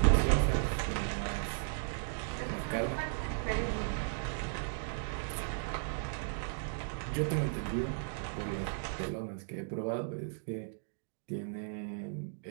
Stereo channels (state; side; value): silent; left; digital silence